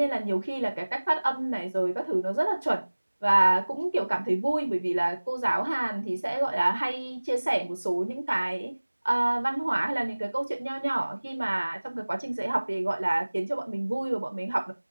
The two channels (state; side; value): inverted; both; correlation -1.00